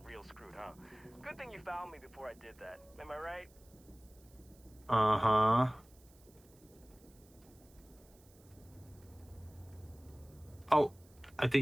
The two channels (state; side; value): noise; right; hiss, 27 dB below the sound